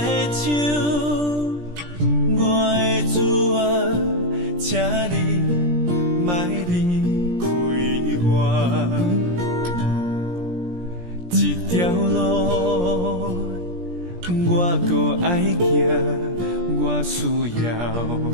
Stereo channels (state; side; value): late; left; 17 ms